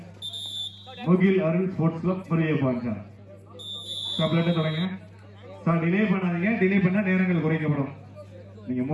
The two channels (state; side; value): identical; both; correlation 1.00